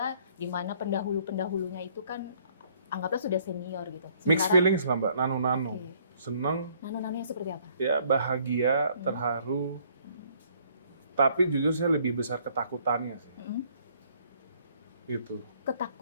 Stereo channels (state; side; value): inverted; both; correlation -0.62